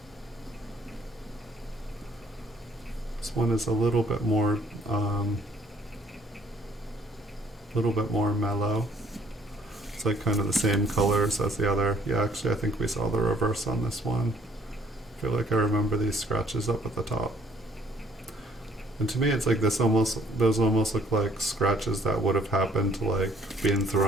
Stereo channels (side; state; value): both; normal; correlation 0.62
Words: This one is a little bit more mellow. It's like kind of the same colors as the other. Yeah, actually I think we saw the reverse on this one. I feel like I remember these scratches up at the top. And to me, it's like those almost look like scratches that would have happened to like being